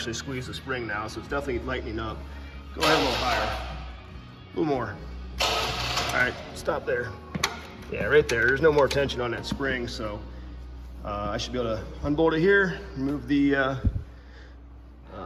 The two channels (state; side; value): identical; both; correlation 1.00